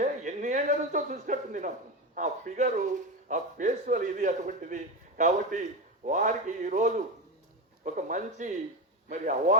ఎన్ని ఏళ్ళ నుంచో చూసినట్టుంది నాకు. ఆ ఫిగరు, ఆ ఫేస్వల్ ఇది అటువంటిది. కాబట్టి వారికి ఈరోజు ఒక మంచి మరి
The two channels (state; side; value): normal; both; correlation 0.18